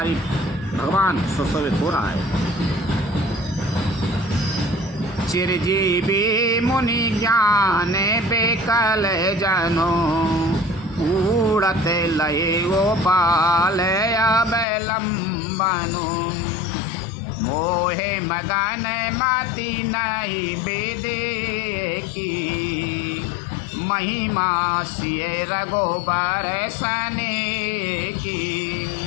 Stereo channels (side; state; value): right; drops out; at 14.7 s